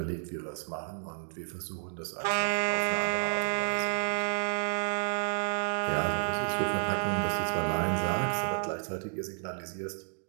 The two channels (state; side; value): silent; left; digital silence